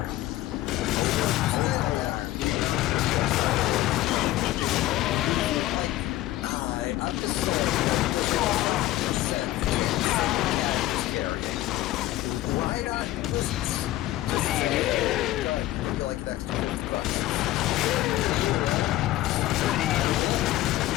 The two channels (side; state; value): right; quieter; 15.8 dB